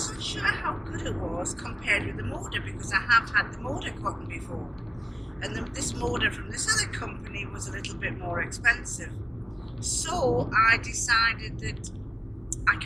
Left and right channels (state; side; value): normal; both; correlation 0.96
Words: sure how good it was compared with the Moda, because I have had the Moda cotton before. And this Moda from this other company was a little bit more expensive. So I decided that I